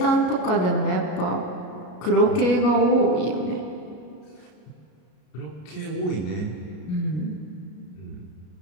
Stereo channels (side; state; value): right; late; 33 ms